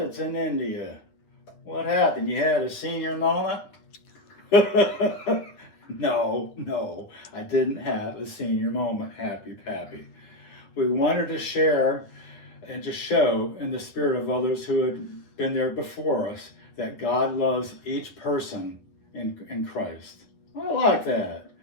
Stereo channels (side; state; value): right; late; 10 ms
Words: in India. What happened? You had a senior moment? No, I didn't have a senior moment, Happy Pappy. We wanted to share and to show in the spirit of others who had been there before us that God loves each person in Christ. I like that.